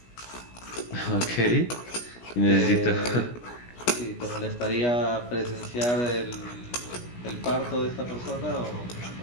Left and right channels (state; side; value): late; right; 17 ms